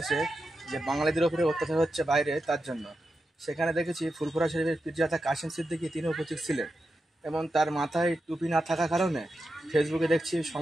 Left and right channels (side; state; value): both; normal; correlation 0.88